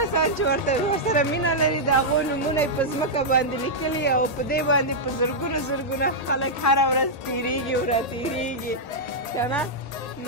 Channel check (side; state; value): right; late; 1.8 ms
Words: چې ورسره مینه لري د هغو نومونه یې په ځمکه باندې لیکلي او په دې باندې په زرګونه خلک هره ورځ تېرېږي او راتېرېږي که نه.